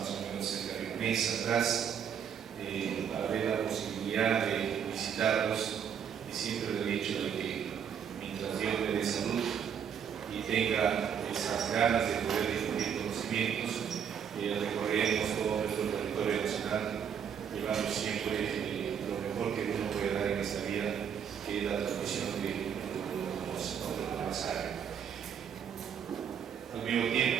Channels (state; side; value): quieter; left; 8.0 dB